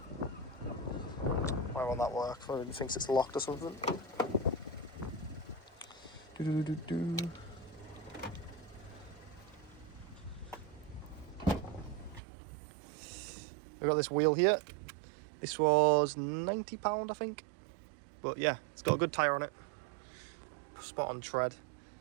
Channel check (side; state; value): left; drops out; at 12.2 s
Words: why won't that work? Maybe he thinks it's locked or something. We've got this wheel here. This was £90, I think. But yeah, it's got a good tyre on it. Spot on tread.